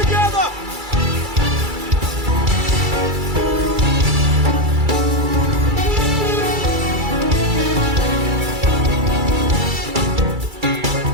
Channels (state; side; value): late; left; 2.3 ms